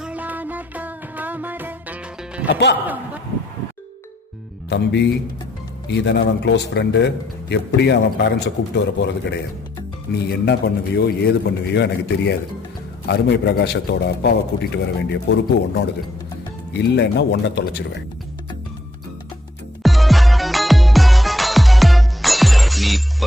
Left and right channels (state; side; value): normal; both; correlation 0.72